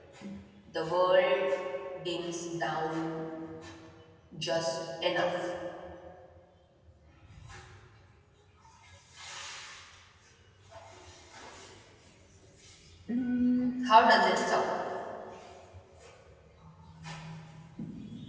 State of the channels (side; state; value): both; identical; correlation 1.00